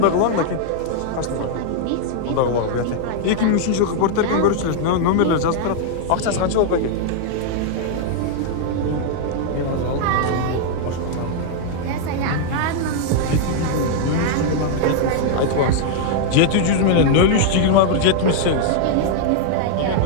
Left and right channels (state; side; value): different; both; correlation 0.00